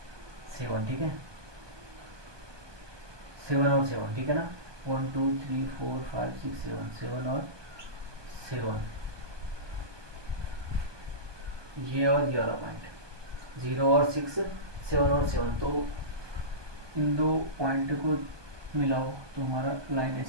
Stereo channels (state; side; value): late; left; 1.2 ms